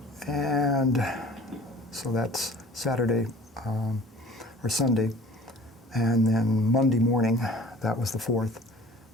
And so that's Saturday or Sunday. And then Monday morning, that was the 4th.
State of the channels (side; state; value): both; normal; correlation 0.46